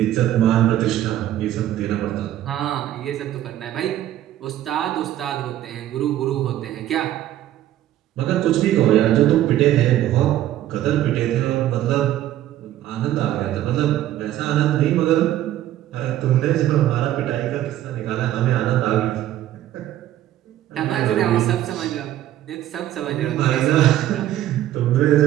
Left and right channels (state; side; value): quieter; left; 13.0 dB